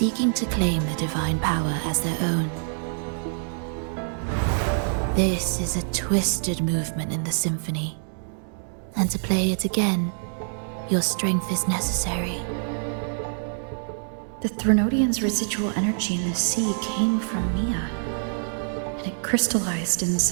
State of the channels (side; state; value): left; silent; digital silence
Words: to claim the divine power as their own. This is a twisted movement in the symphony, and to play it again, your strength is necessary. The Threnodian's residual energy in the sea came from Mia, and it crystallized